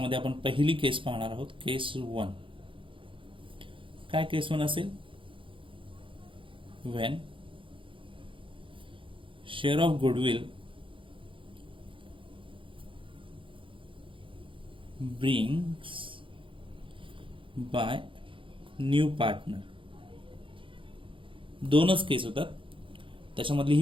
आपण पहिली केस पाहणार आहोत, केस 1. काय केस 1 असेल? When share of goodwill brings by new partner. दोनच केस होतात, त्याच्यामधली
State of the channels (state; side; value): late; left; 0.25 ms